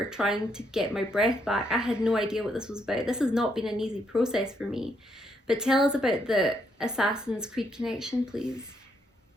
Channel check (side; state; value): both; normal; correlation 0.75